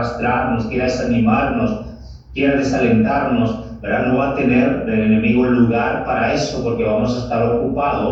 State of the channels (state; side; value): identical; both; correlation 1.00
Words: quiera desanimarnos, quiera desalentarnos, ¿verdad? No va a tener el enemigo lugar para eso, porque vamos a estar